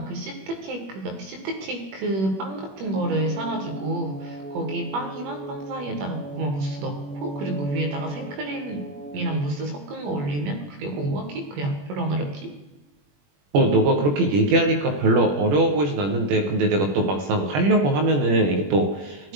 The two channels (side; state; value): left; late; 21 ms